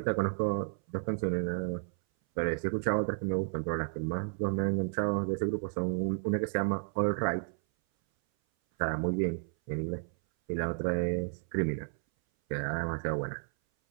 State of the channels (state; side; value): silent; left; 56 dB below the other